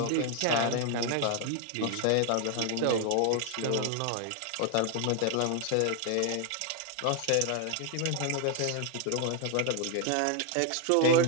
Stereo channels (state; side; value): different; both; correlation 0.00